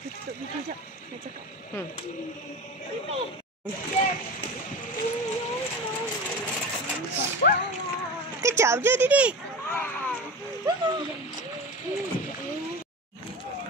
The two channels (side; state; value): both; normal; correlation 0.29